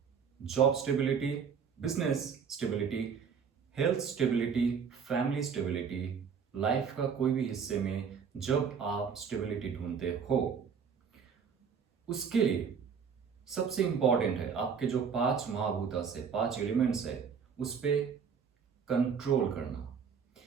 job stability, business stability, health stability, family stability, life का कोई भी हिस्से में जब आप स्टेबिलिटी ढूंढते हो, उसके लिए सबसे इंपॉर्टेंट है आपके जो 5 महाभूता से 5 एलिमेंट्स है उस पे कंट्रोल करना।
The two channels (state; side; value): quieter; left; 6.6 dB